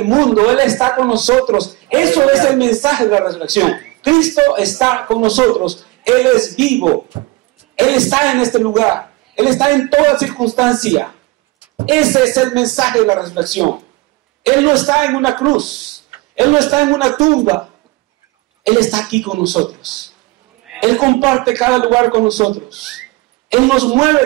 mundo. Él está con nosotros. Eso es el mensaje de la resurrección. Cristo está con nosotros. Él es vivo. Él está en este lugar. Él está en toda circunstancia. Ese es el mensaje de la resurrección. Él no está en una cruz. Él no está en una tumba. Él está aquí con nosotros. Él comparte cada lugar con nosotros. Él nos mueve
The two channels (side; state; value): left; quieter; 22.9 dB